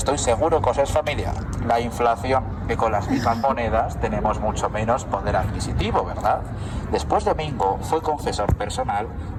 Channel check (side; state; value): both; identical; correlation 1.00